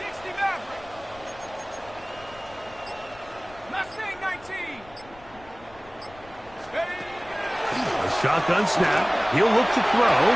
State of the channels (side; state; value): left; noise; rumble, 23 dB below the sound